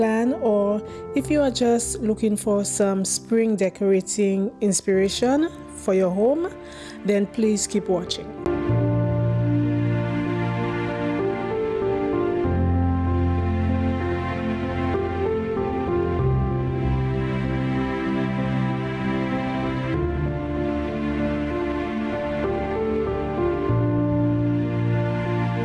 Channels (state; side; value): identical; both; correlation 1.00